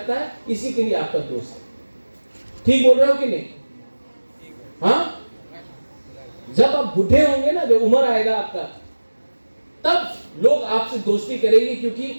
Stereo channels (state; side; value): inverted; both; correlation -1.00